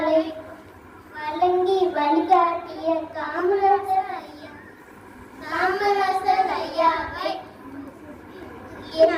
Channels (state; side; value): identical; both; correlation 1.00